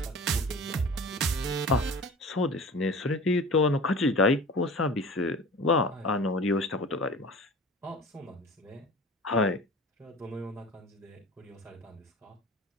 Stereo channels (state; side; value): normal; both; correlation 0.38